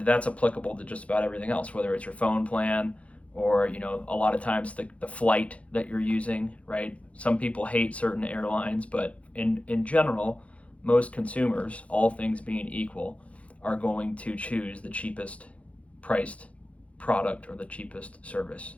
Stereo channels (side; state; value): right; late; 0.064 ms